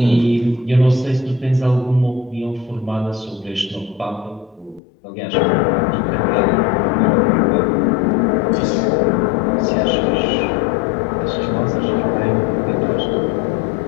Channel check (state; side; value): drops out; right; at 4.8 s